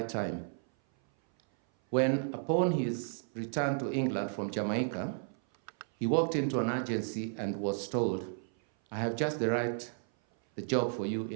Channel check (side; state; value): left; silent; 56 dB below the other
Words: time. When, upon his return to England from Jamaica, he walked into an agency and was told, "I have just the job for you